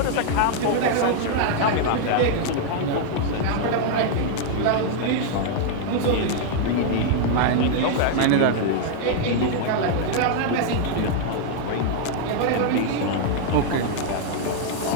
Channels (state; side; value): different; both; correlation 0.00